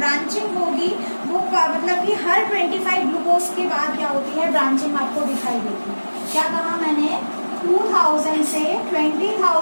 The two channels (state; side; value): inverted; both; correlation -1.00